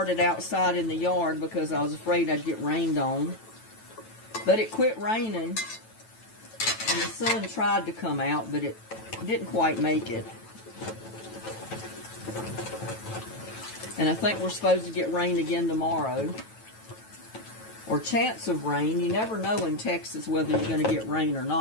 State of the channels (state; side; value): late; right; 9.1 ms